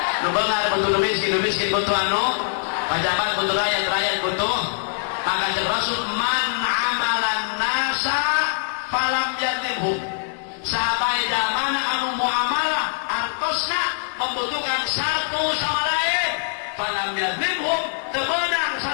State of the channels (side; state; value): right; silent; digital silence